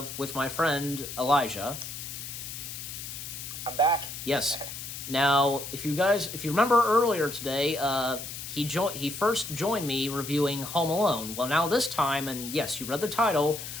with my friend Elijah. I'm back. Yes. Now, if you remember earlier today, he first joined me reviewing Home Alone. Well, now this time, and yes, you read the title,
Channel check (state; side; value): noise; left; hiss, 9 dB below the sound